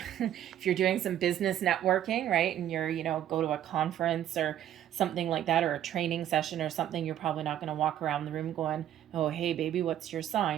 you're doing some business networking, right, and you're go to a conference or something like that, or a training session or something, you're probably not going to walk around the room going, "Oh, hey, baby, what's your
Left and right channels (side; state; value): left; quieter; 11.3 dB